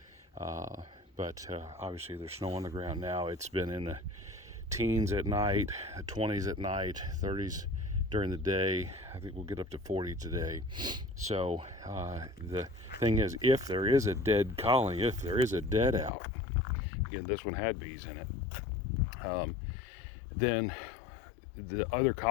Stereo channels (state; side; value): drops out; right; at 16.1 s